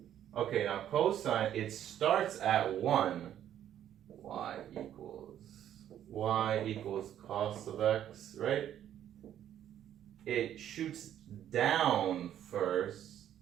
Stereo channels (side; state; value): left; quieter; 10.8 dB